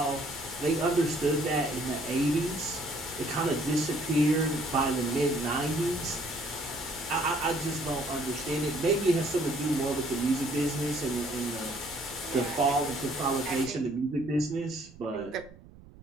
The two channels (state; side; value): noise; right; rumble, 21 dB below the sound